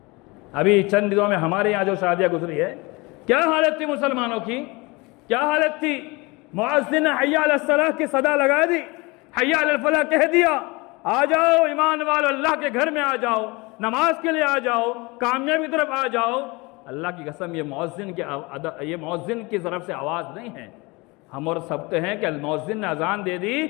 ابھی چند دنوں میں ہمارے یہاں جو شادیاں گزری ہے، کیا حالت تھی مسلمانوں کی؟ کیا حالت تھی؟ مؤذن نے حی علی الصلاۃ کی صدا لگا دی، حی علی الفلاح کہہ دیا، آ جاؤ ایمان والو، اللہ کے گھر میں آ جاؤ، نماز کے لیے آ جاؤ، کامیابی کی طرف آ جاؤ۔ اللہ کی قسم، یہ مؤذن کی طرف سے آواز نہیں ہے۔ ہم اور سمجھتے ہیں کہ المؤذن نے اذان دے دی،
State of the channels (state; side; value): quieter; right; 25.3 dB